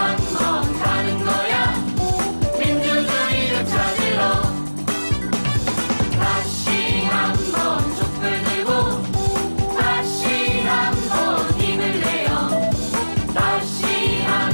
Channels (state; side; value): inverted; both; correlation -1.00